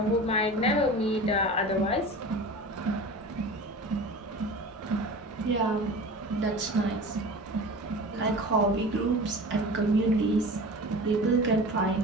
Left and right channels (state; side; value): normal; both; correlation 0.35